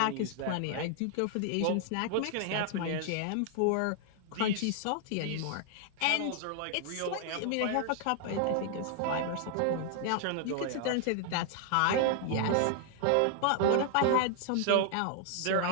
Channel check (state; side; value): different; both; correlation 0.00